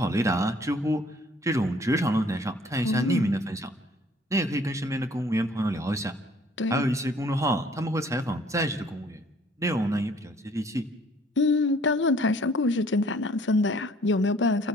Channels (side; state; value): both; normal; correlation 0.57